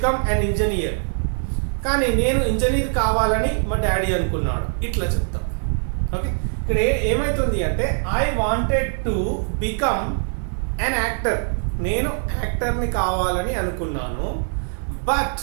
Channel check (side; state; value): left; silent; 58 dB below the other